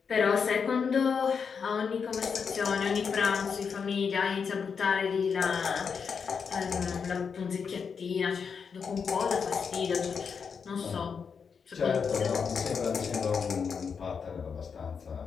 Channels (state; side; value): quieter; right; 6.1 dB